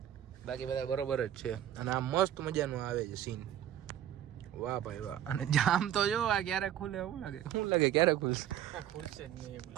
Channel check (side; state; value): left; quieter; 11.3 dB